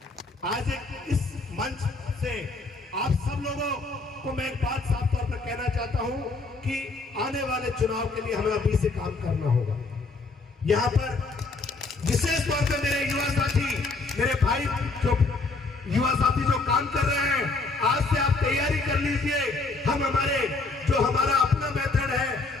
आज इस मंच से आप सब लोगों को मैं एक बात साफ तौर पर कहना चाहता हूं कि आने वाले चुनाव के लिए हमें अभी से काम करना होगा। यहाँ पर विशेष तौर पे मेरे युवा साथी, मेरे भाई जो युवा साथी जो काम कर रहे हैं, आज से आप तैयारी कर लीजिए। हम हमारा अपना मेथड है,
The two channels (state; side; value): quieter; right; 3.7 dB